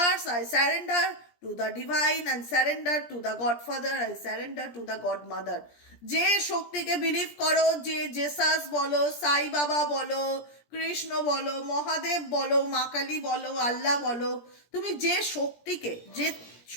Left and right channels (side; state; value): right; late; 17 ms